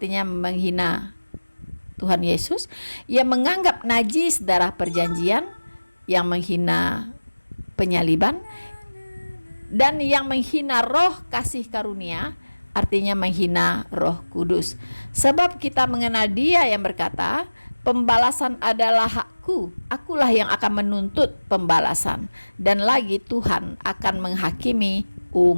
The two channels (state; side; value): inverted; both; correlation -1.00